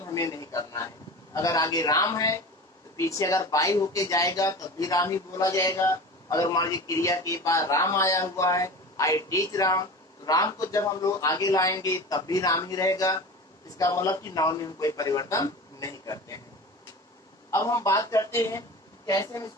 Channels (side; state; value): both; normal; correlation 0.33